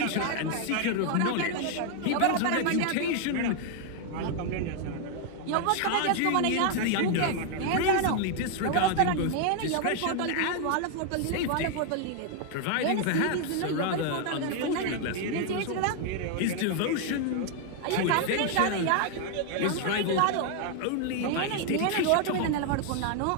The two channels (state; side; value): different; both; correlation 0.00